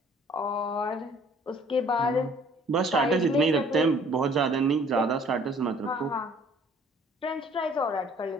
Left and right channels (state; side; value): normal; both; correlation 0.56